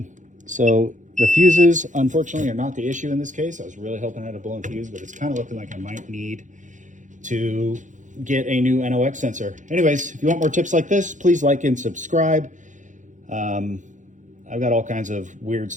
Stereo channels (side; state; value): left; late; 0.36 ms